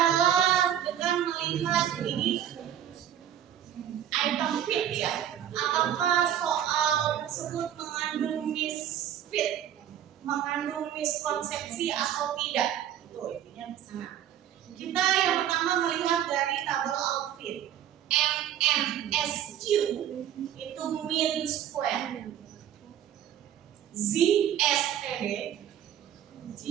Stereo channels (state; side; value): quieter; left; 10.5 dB